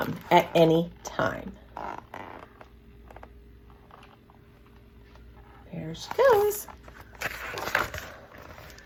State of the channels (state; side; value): identical; both; correlation 1.00